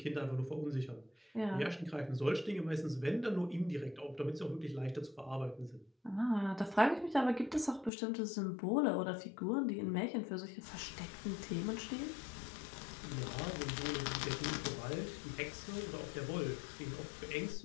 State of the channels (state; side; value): drops out; right; at 7.9 s